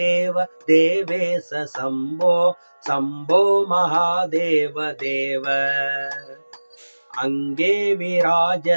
देवेश शम्भो शम्भो महादेव देव अंगे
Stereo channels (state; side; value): inverted; both; correlation -1.00